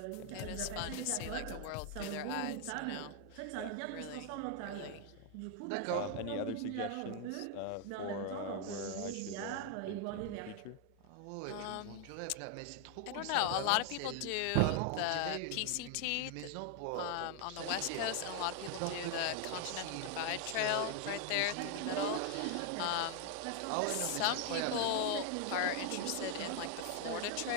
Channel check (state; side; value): different; both; correlation 0.00